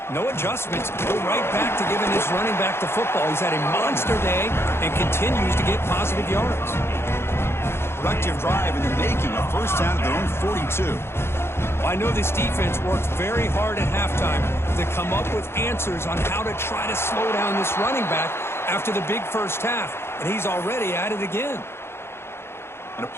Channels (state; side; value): late; right; 0.12 ms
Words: no adjustments. Go right back to giving his running back the football. He's had a monster day and continues to get positive yards. Productive drive in the making, a 1st down at their own 42. Well, I know this defense worked very hard at halftime to come up with answers on how to try to slow down this running back after the big first half, and he's already at it again. And a